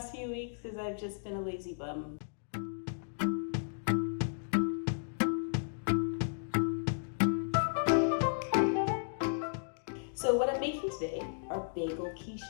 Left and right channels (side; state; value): right; silent; digital silence